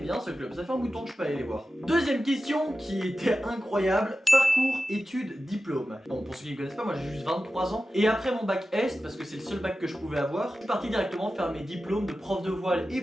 ce club, ça fait un bout de temps que je peux aller les voir. Deuxième question qui était incroyable, parcours, études, diplôme. Bon, pour ceux qui ne connaissent pas, moi j'ai juste 23 ans. Et après mon bac S, parce que c'est le seul bac que je pouvais avoir, je suis parti directement faire mes diplômes de prof de voile et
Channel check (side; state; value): both; normal; correlation 0.93